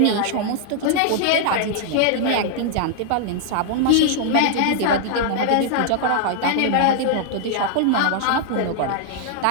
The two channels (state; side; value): different; both; correlation -0.01